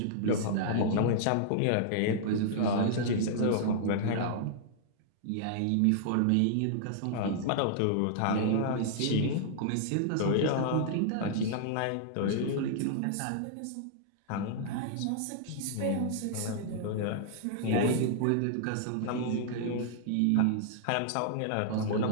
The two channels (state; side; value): different; both; correlation -0.01